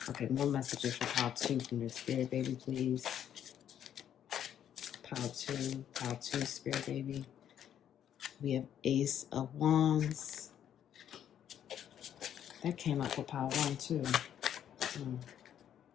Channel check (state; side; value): quieter; right; 9.9 dB